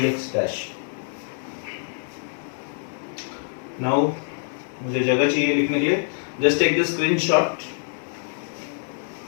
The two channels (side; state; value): right; silent; 58 dB below the other